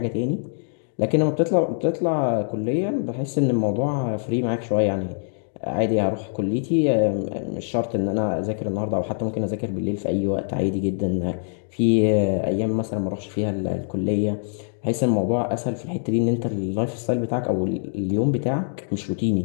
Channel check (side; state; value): right; silent; digital silence